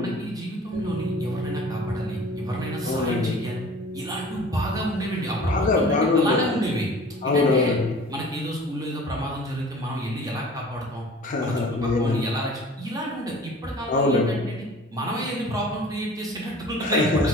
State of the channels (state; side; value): normal; both; correlation 0.45